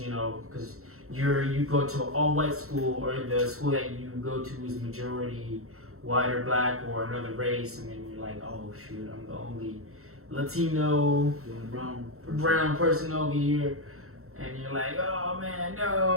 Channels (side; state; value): left; late; 0.63 ms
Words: you know, because you go to an all-white school, or the school that you go to is majority white or black or another race, and then you're like, oh shoot, I'm the only Latino, brown person over here, and you're like, oh man,